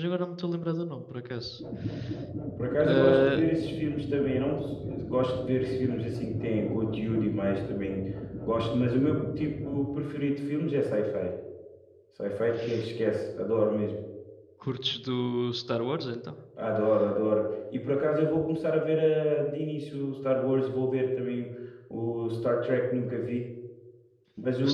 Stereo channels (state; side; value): identical; both; correlation 1.00